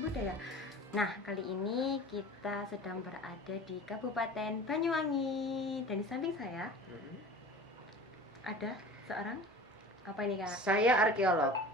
budaya. Nah, kali ini kita sedang berada di Kabupaten Banyuwangi. Dan di samping saya ada seorang, apa ini Kak? Saya arkeolog.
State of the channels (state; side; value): normal; both; correlation 0.39